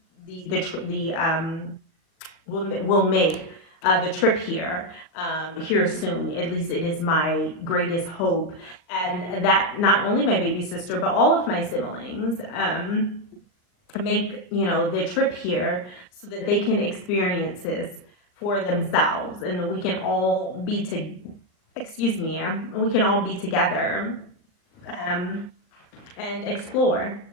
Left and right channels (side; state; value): right; late; 39 ms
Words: will make the trip here soon. At least it is my greatest hope. And that not only my baby sister, but all of my siblings make, the trip here so that they can experience this for themselves. And we can all be we can all be together and explore.